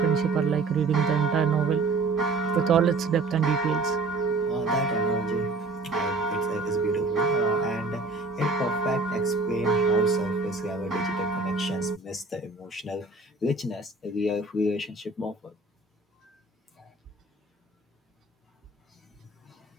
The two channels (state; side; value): quieter; left; 3.5 dB